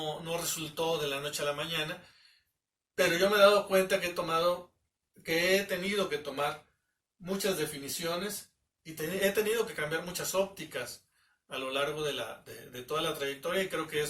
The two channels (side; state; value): both; identical; correlation 1.00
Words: resultó de la noche a la mañana, pero yo me he dado cuenta que he tenido que tomar muchas definiciones y he tenido que cambiar muchas ópticas a lo largo de toda la trayectoria, y creo que